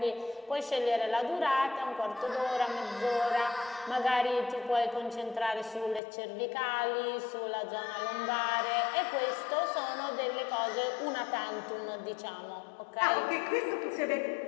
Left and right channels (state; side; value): drops out; right; at 6.0 s